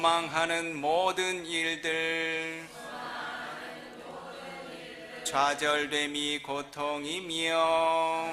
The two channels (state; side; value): identical; both; correlation 1.00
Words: 모든 일들 좌절됨이 고통이며